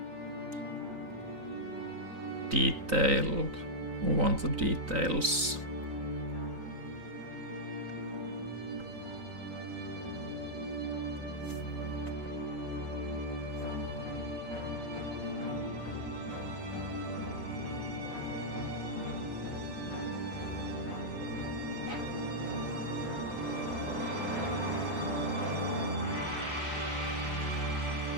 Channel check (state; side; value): late; left; 3.9 ms